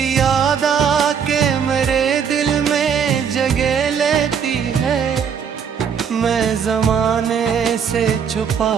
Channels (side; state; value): left; quieter; 7.2 dB